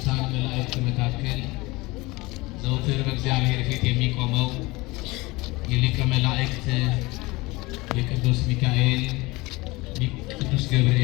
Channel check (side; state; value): right; quieter; 22.5 dB